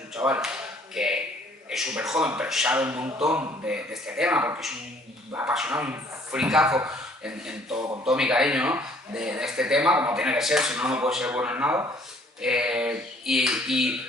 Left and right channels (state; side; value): normal; both; correlation 0.59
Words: chaval que es súper joven, pero sabe un montón de este tema, porque es un apasionado, un fricazo con todo mi cariño, ¿no? de este tema, como tiene que ser, si no, no puede ser bueno en nada. Y,